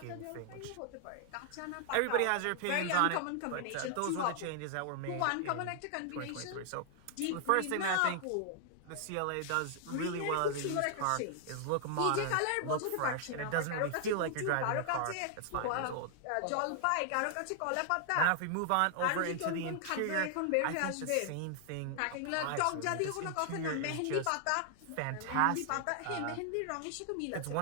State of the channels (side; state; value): both; different; correlation 0.00